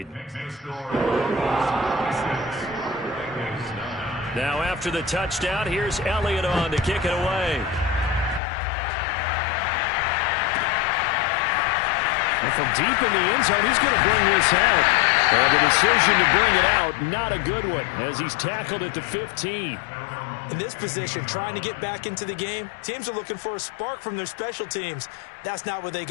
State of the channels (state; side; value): drops out; right; at 8.4 s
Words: Now after the touchdown, here's Elliott on to kick it away. Well, from deep in the end zone, he's going to bring this out. And the decision to bring it out, not a good one, as he's tackled at the 15. In this position, trying to get back into the game, teams are looking for a spark from their special teams. That's not what they